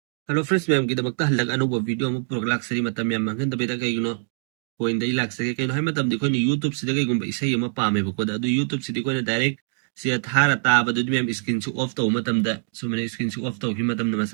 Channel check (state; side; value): silent; left; 62 dB below the other